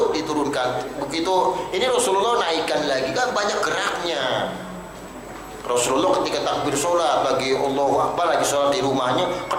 diturunkan. Begitu ini Rasulullah naikkan lagi, kan banyak geraknya. Rasulullah ketika takbir sholat lagi Allahu Akbar, lagi sholat di rumahnya,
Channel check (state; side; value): identical; both; correlation 1.00